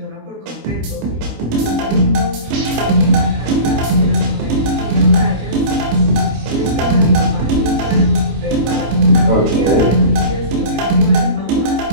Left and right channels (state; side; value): late; left; 25 ms